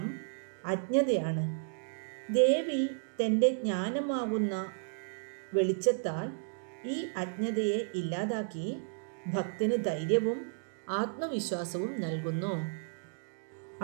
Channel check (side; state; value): left; silent; digital silence